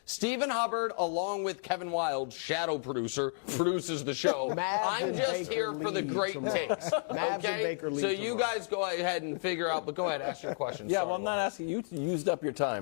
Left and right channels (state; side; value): silent; right; digital silence